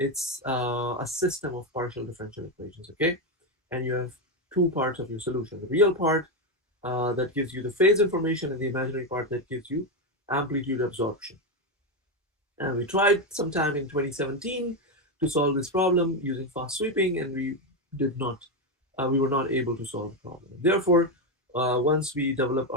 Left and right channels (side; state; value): both; normal; correlation 0.08